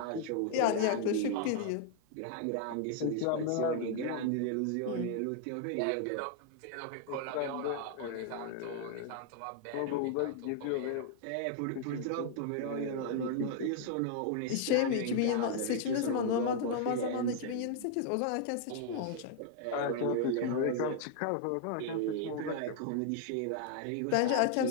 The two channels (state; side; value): different; both; correlation 0.00